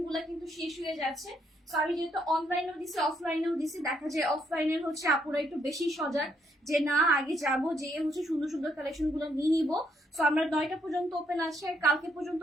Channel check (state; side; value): normal; both; correlation 0.74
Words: গুলা কিন্তু শেষ হয়ে যাচ্ছে। সো আমি যেহেতু অনলাইনেও দিছি অফলাইনেও দিছি, দেখা যায় অফলাইনের হচ্ছে আপুরা একটু বেশি সজাগ, যে না আগে যাবো, যে হচ্ছে সুন্দর সুন্দর কালেকশন গুলো নিয়ে নিবো। সো আমরা 9টা পর্যন্ত ওপেন আছে, আর কালকে পর্যন্ত